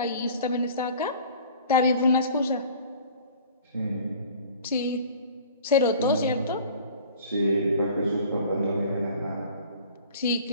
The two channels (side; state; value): both; inverted; correlation -0.47